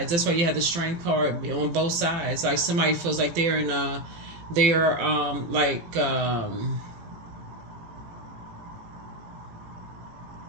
That's why you have the strength card on both sides. Like somebody feels like they're in a, they're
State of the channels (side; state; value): left; late; 18 ms